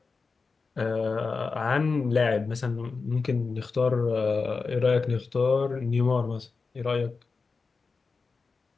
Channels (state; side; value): quieter; right; 4.5 dB